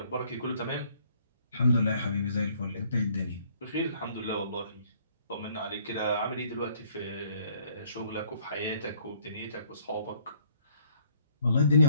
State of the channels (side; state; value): both; inverted; correlation -0.64